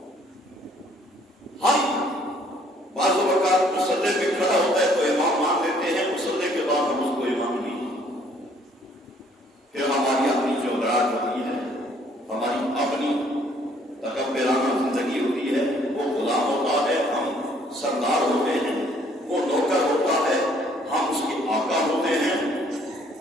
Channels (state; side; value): normal; both; correlation 0.62